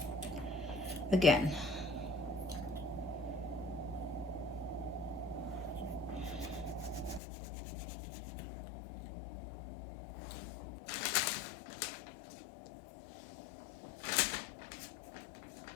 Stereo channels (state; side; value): drops out; right; at 7.2 s